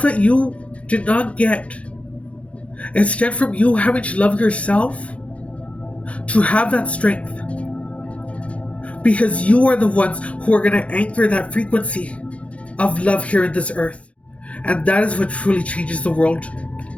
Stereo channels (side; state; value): right; late; 0.063 ms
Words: that you did not get, instead from you having to love yourself, to have that strength. Because you are the ones who are going to anchor that frequency of love here in this earth. And that is what truly changes the world